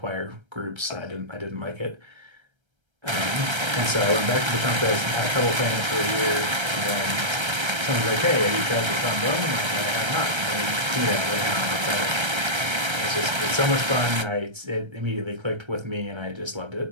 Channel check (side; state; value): left; late; 1.3 ms